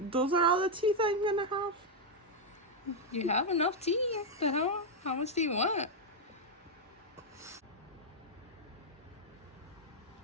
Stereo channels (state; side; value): normal; both; correlation 0.00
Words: are all the teeth I'm gonna have. You have enough teeth. The hell? How much do you want?